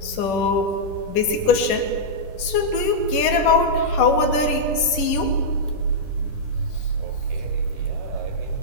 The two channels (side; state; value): right; late; 10 ms